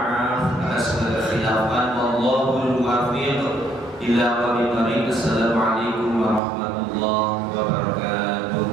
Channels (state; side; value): drops out; left; at 6.4 s